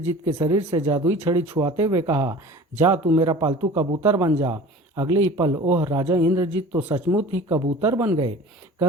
के शरीर से जादुई छड़ी छुआते हुए कहा, जा तू मेरा पालतू कबूतर बन जा। अगले ही पल ओह राजा इंद्रजीत तो सचमुच ही कबूतर बन गए।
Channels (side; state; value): both; normal; correlation 0.41